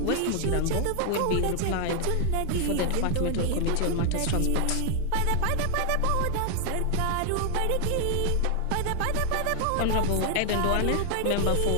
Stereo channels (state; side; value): different; both; correlation 0.00